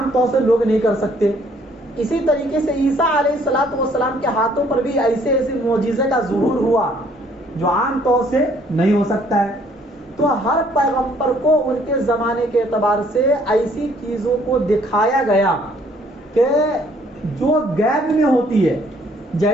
طور سے لوگ نہیں کر سکتے. اسی طریقے سے عیسیٰ علیہ الصلوۃ والسلام کے ہاتھوں پر بھی ایسے معجزے کا ظہور ہوا جو عام طور سے نہیں ہو سکتا ہے. تو ہر پیغمبر کو ان کے زمانے کے اعتبار سے ایسی چیزوں کو دکھایا گیا کہ جو غیب میں ہوتی ہے.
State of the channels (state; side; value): normal; both; correlation 0.62